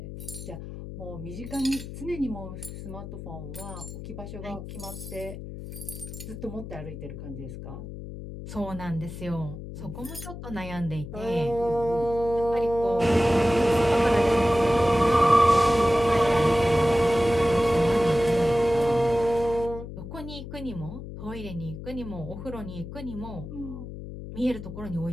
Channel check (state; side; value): noise; left; hum, 10 dB below the sound